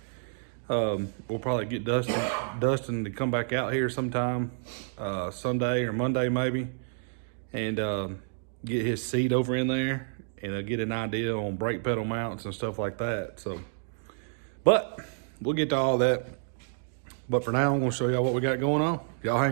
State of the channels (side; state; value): left; silent; digital silence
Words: We'll probably get Dustin to come back out here sometime Sunday or Monday maybe, and get his seat over in there, and get an idea on brake pedal mounts and stuff like that. So, but we'll get to all that. But for now, I'm gonna show y'all what we got going on. Y'all